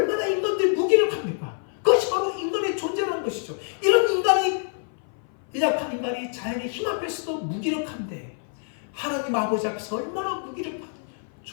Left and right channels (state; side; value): silent; right; 57 dB below the other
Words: 인간들이 무기력합니까? 그것이 바로 인간의 존재라는 것이죠. 이런 인간이, 연약한 인간이 자연의 힘 앞에서도 무기력한데 하나님 아버지 앞에서 얼마나 무기력한